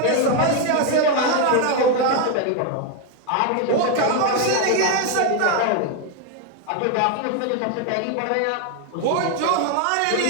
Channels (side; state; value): both; different; correlation 0.01